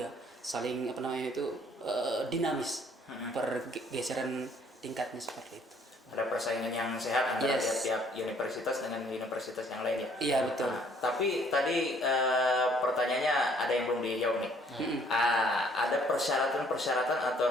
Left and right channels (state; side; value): normal; both; correlation 0.61